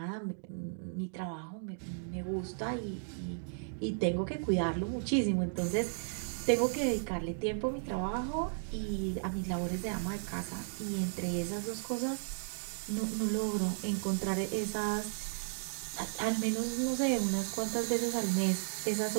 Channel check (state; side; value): silent; left; digital silence